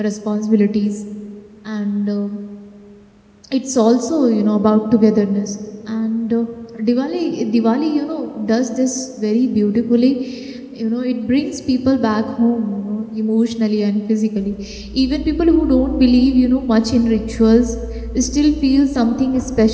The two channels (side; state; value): both; identical; correlation 1.00